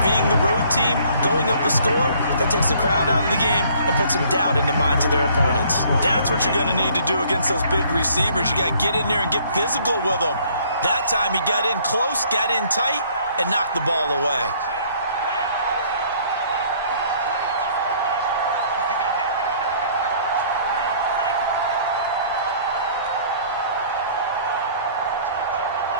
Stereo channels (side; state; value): both; inverted; correlation -0.58